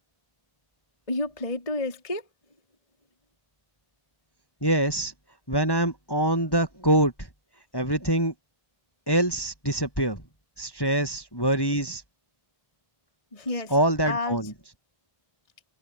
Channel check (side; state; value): right; late; 1.1 ms